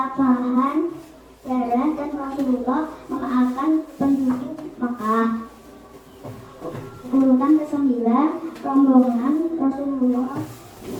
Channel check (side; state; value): both; identical; correlation 1.00